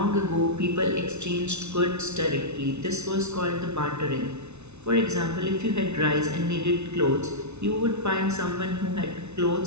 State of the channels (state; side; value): late; left; 0.81 ms